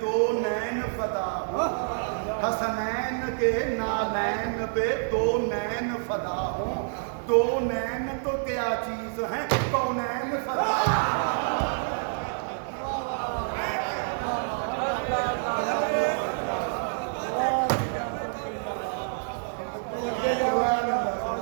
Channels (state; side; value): silent; left; digital silence